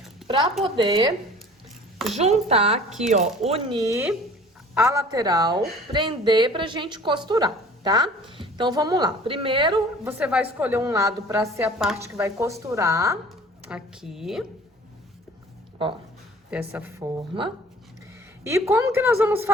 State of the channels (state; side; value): normal; both; correlation 0.47